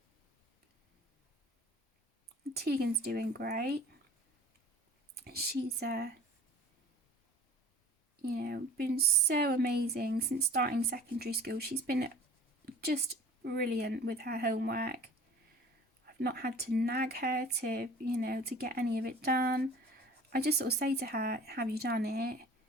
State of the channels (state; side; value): normal; both; correlation 0.45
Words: Tegan's doing great. She's, been so amazing since starting secondary school. She's been just brilliant with her homework. I've not had to nag her to get any of it done. I just sort of say to her, have you done it?